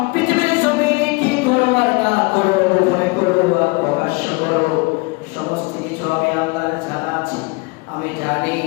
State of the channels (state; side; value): quieter; right; 28.1 dB